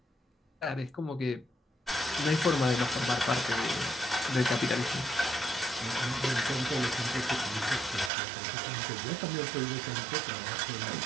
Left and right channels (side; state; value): left; drops out; at 8.1 s